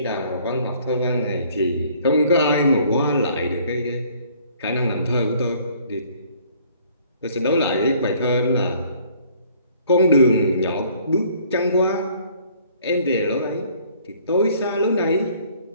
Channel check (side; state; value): both; inverted; correlation -0.58